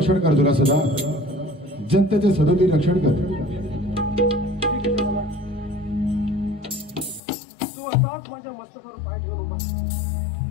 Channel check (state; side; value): drops out; right; at 7.2 s